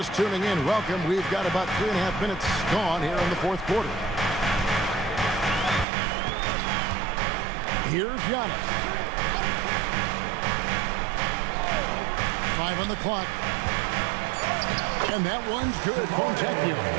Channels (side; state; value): left; drops out; at 5.9 s